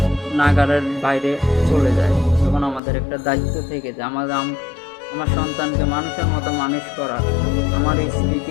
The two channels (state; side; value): drops out; right; at 2.8 s